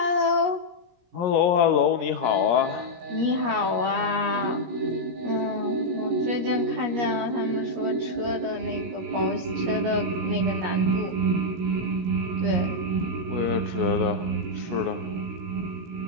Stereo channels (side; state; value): left; late; 17 ms